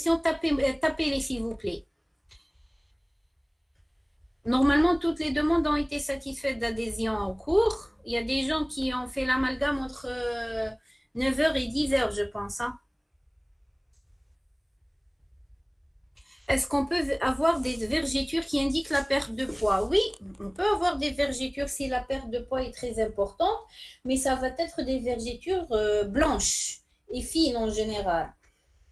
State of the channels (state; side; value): identical; both; correlation 1.00